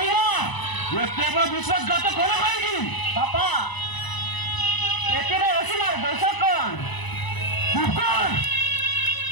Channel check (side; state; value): right; late; 1.0 ms